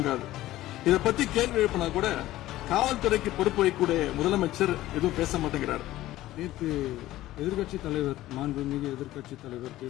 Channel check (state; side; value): quieter; right; 15.5 dB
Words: இதை பத்தி கேள்வி எழுப்பினா கூட காவல்துறைக்கு பொறுப்பு வைக்கக்கூடிய முதலமைச்சர் எதுவும் பேச மாட்டேங்கிறார். நேற்று எதிர்கட்சி தலைவர், மாண்புமிகு எதிர்கட்சி தலைவர்